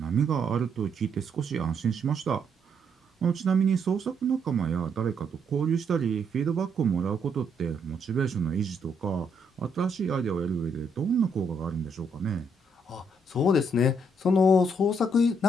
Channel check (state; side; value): normal; both; correlation 0.73